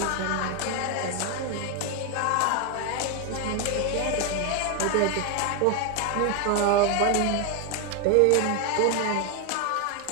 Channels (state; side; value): different; both; correlation 0.01